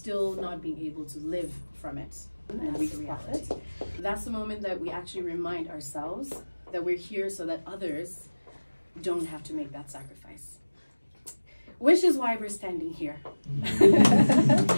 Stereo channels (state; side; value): inverted; both; correlation -1.00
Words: not being able to live from it and reach reality. That's the moment that we actually remind ourselves that we're here so that others don't have to make that sacrifice. Which is why we're standing here.